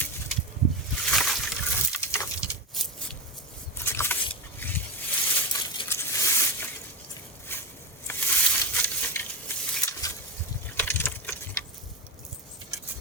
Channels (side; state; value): both; normal; correlation 0.17